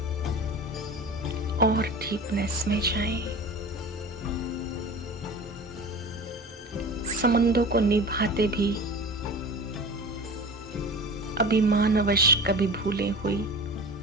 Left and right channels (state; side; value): normal; both; correlation 0.35